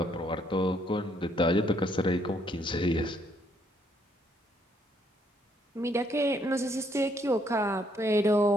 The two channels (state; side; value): normal; both; correlation 0.70